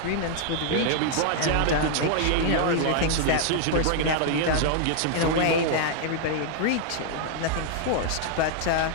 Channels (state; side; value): different; both; correlation -0.01